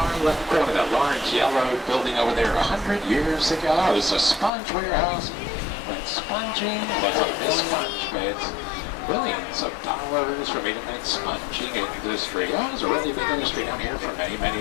left corner, that large yellow building over there 100 years ago, it was a sponge warehouse. When sponging was on this sponge beds, billions of dollars for me to make sponging industry. Oh, it was a really big industry down here for many,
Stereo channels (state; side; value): drops out; right; at 4.5 s